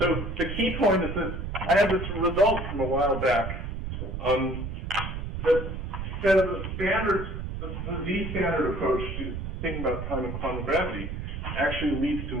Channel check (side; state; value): right; noise; rumble, 5 dB below the sound